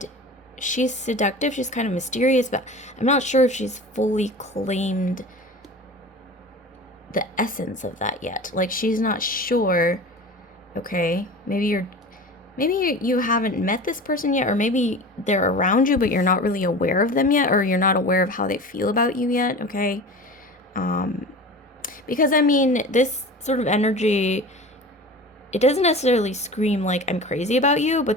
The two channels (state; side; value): normal; both; correlation 0.35